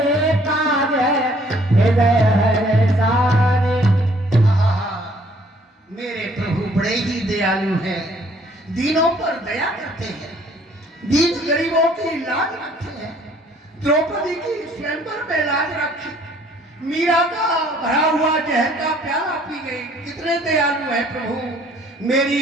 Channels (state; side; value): normal; both; correlation 0.60